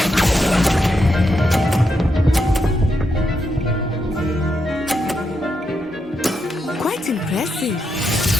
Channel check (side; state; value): both; normal; correlation 0.82